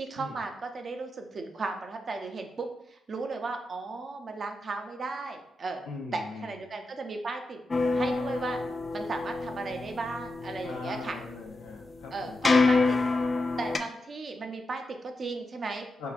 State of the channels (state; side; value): normal; both; correlation 0.88